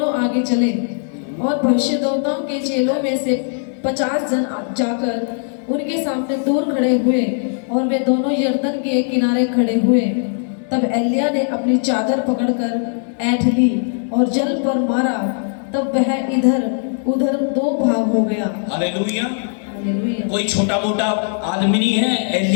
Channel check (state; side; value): silent; right; 61 dB below the other